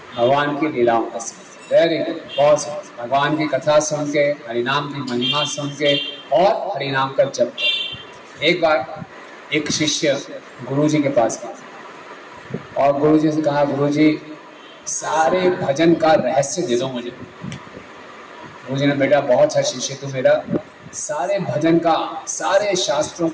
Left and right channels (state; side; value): identical; both; correlation 1.00